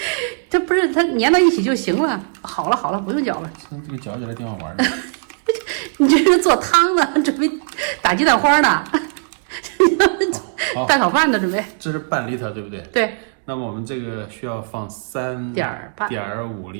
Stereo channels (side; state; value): left; silent; digital silence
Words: 这不是它粘到一起就行了。好了，不用搅了。这个搅起来挺好玩的。你这是做汤呢，准备打鸡蛋花呢，蛋炒饭呢，准备。这是半厘头，对不对？对。那么我们这个需要放3.5